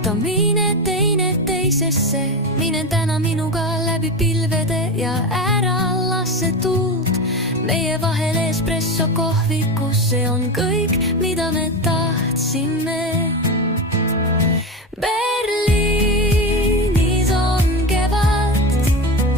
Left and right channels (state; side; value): normal; both; correlation 0.20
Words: mine teineteisesse. Minen täna minuga läbi pilvede ja ära lase tuult meie vahel espresso kohvikus. See on kõik, mida me tahtsime. Berliinis on kevad,